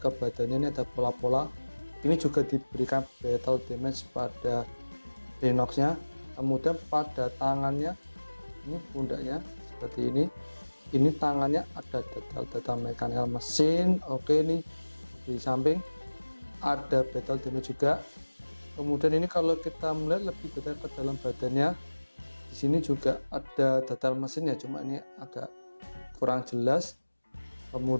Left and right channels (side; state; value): both; inverted; correlation -1.00